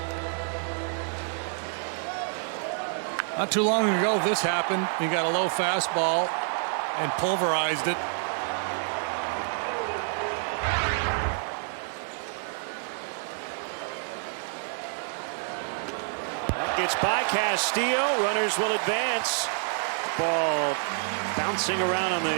Not too long ago, this happened. He got a low fastball and pulverized it. It's by Castillo. Runners will advance. Ball bouncing around on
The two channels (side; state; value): left; silent; 58 dB below the other